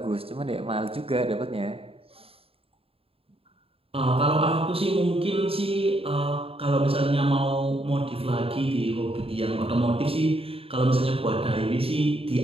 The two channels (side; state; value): left; late; 0.27 ms